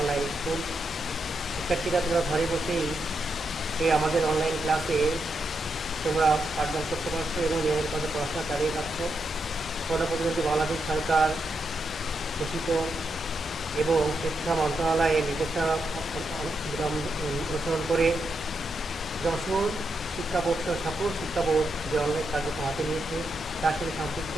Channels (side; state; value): both; normal; correlation 0.83